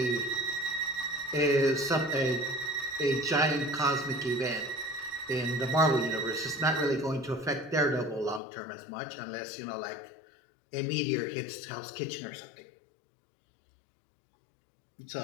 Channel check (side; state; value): right; drops out; at 8.4 s